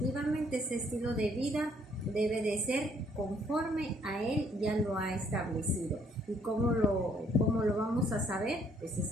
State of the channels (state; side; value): normal; both; correlation 0.65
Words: ese estilo de vida debe de ser conforme a Él ya lo ha establecido. ¿Y cómo lo vamos a saber? Pues es